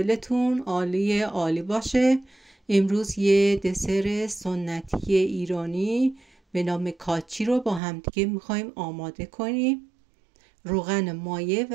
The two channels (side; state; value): left; drops out; at 7.8 s